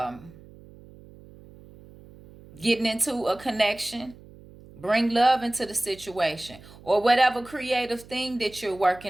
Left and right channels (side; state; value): right; noise; hum, 21 dB below the sound